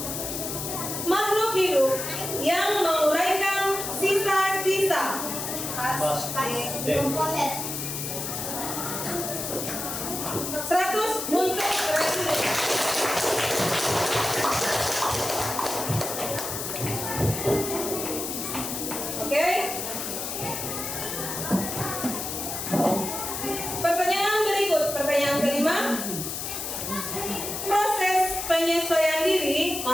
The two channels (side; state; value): left; noise; hiss, 4 dB below the sound